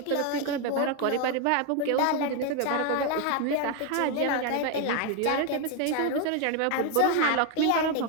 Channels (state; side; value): different; both; correlation 0.01